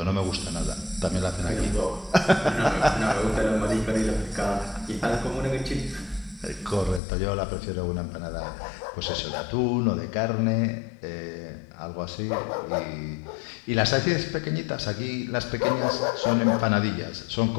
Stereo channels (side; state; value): right; drops out; at 7.0 s